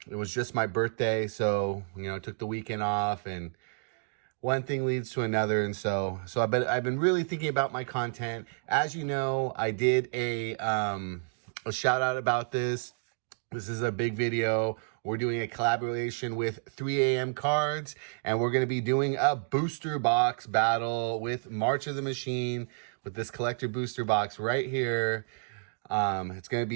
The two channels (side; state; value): left; silent; digital silence